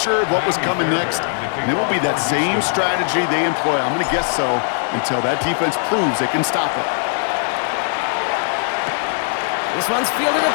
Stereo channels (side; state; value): right; silent; digital silence